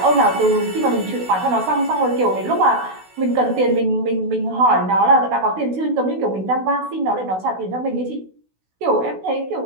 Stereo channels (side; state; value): left; late; 16 ms